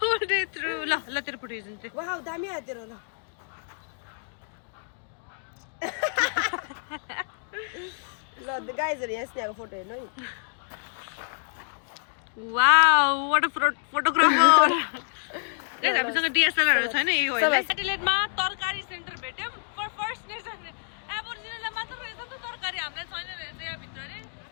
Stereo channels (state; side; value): silent; right; digital silence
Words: through ल तेरो फोटो हेर्छु वाउ दामी आयो तेरो ल ल गाइजहरू यहाँ स्नेहाको फोटो हेर्नु है wow what a photographer guys हामीसँग डीएसएलआर छैन यही होइन एडिलेडमा तरकारी सेन्टर भेट्यौँ पर फर्स्ट नेसन एबोरिजिनललाई मात्र रहेछ नि त तरकारी हामीलाई छैन रहेछ यहाँ भित्र रे